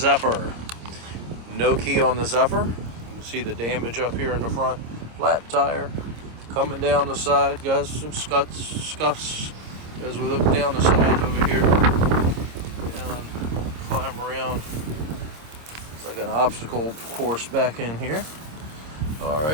No key on the Zephyr. You can see the damage up here in the front. Flat tire. Coming down the side, got some scuffs as we look down the side over here. And climb around. It's like an obstacle course back in here. All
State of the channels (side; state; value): left; late; 26 ms